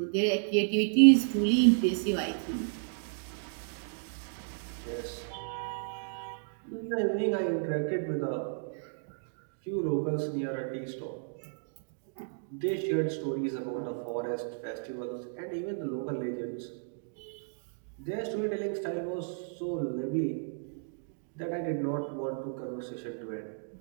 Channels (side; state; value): left; silent; digital silence